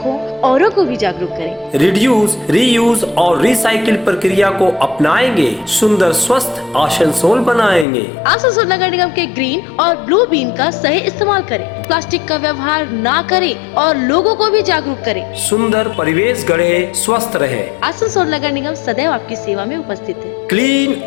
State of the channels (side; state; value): right; drops out; at 7.9 s